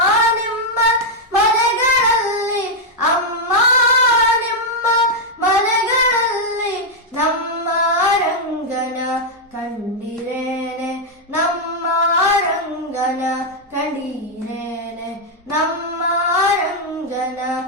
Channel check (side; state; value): both; normal; correlation -0.01